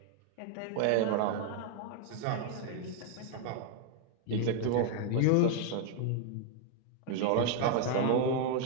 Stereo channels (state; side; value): different; both; correlation 0.00